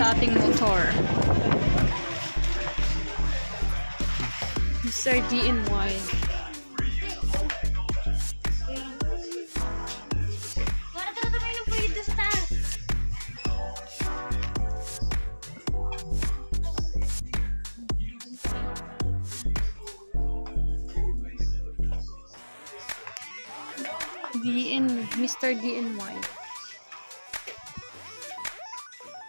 ating motor. Mr. DNY. Mr. DNY.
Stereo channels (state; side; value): inverted; both; correlation -1.00